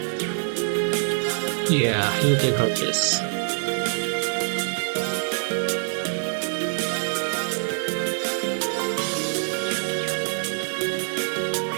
Yeah, you take her this.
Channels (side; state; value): left; silent; digital silence